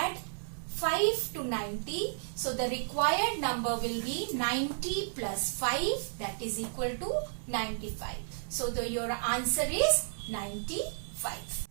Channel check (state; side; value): silent; left; digital silence